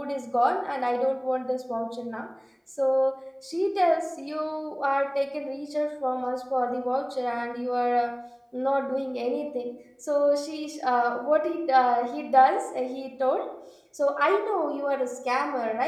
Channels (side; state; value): both; identical; correlation 1.00